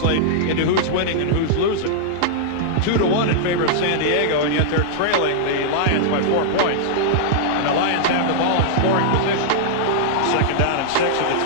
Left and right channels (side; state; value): both; different; correlation -0.02